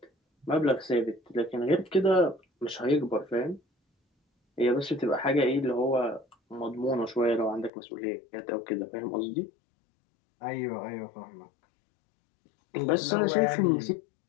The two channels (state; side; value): drops out; right; at 7.7 s